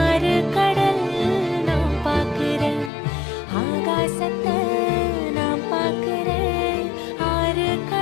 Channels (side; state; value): right; drops out; at 2.9 s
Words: ஆறு கடல் நான் பார்க்கிறேன். ஆகாசத்தை நான் பார்க்கிறேன், ஆறு